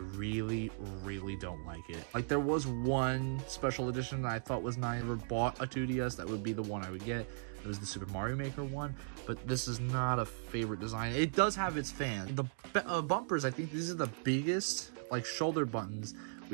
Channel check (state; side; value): silent; left; digital silence